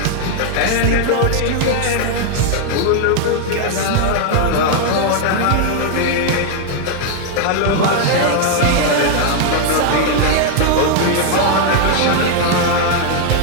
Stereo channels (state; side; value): different; both; correlation 0.00